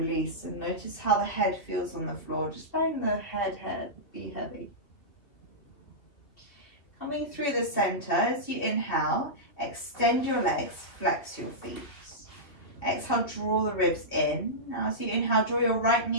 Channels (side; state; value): right; late; 2.6 ms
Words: and notice how the head feels on the floor, just letting the head be heavy. Coming through the center, as you inhale, extend your legs, flex your feet. Exhale, draw the ribs in. Now as you inhale, draw your right